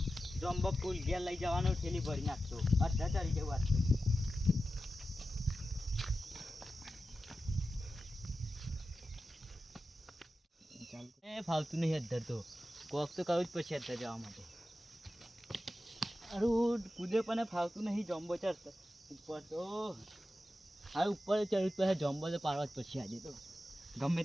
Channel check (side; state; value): both; normal; correlation 0.92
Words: જમ્બો ફૂલ ઘેર લઈ જવાનું થેલી ભરીને આજ તો અડધા ચડી જવું આજ તો એ ફાવતું નહીં અધર તો કોક તો કરવું જ પડશે અધર જવા માટે અરું કૂદે પણ ફાવતું નહીં જમ્બો ચડતો ઉપર તો હવે ઉપર ચડવું પછી જમ્બો તો પાડવા જ પડશે આજે તો ગમે